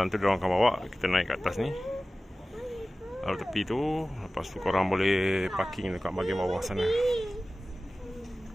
tu diorang akan bawa kita naik kat atas ni, lalu tepi tu. Lepas tu korang boleh parking dekat bahagian bawah sana.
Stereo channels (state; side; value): normal; both; correlation 0.97